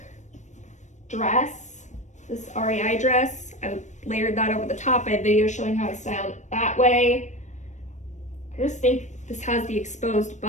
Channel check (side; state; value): right; late; 0.35 ms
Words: dress, this REI dress. I layered that over the top. I have videos showing how I styled it that way. I just think this has the exposed